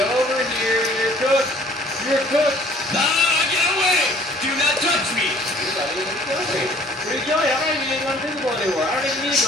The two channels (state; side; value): normal; both; correlation 0.55